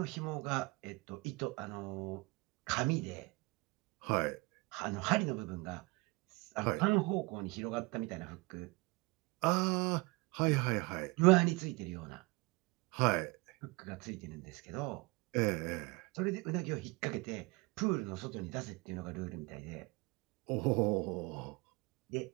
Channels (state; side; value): quieter; left; 25.0 dB